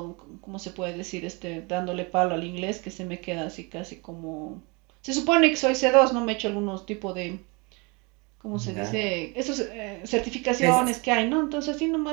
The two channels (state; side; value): quieter; left; 29.1 dB